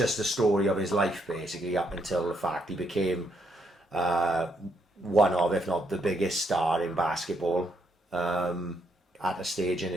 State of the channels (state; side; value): normal; both; correlation 0.75